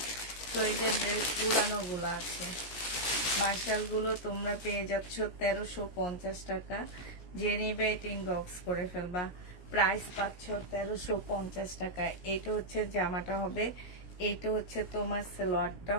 তো এই যে ড্রেস পুরানোগুলো আছে, মার্শালগুলো তোমরা পেয়ে যাচ্ছ 1350 টাকা। যে নিবে এটা ইনবক্স করে ফেলবা। প্রাইস পাচ্ছ 1350 টাকা। এটা হচ্ছে জামাটা হবে, এইটা হচ্ছে তোমার সালোয়ারটা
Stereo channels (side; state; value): right; late; 17 ms